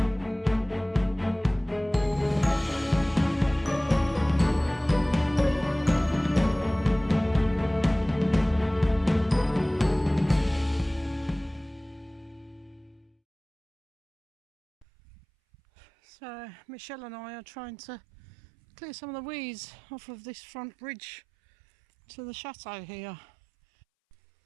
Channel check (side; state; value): left; drops out; at 14.9 s